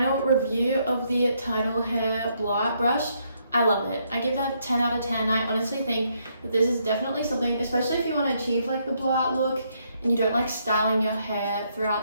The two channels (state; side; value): inverted; both; correlation -0.74